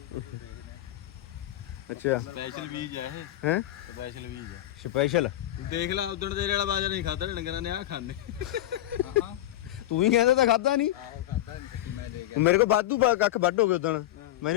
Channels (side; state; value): right; quieter; 13.9 dB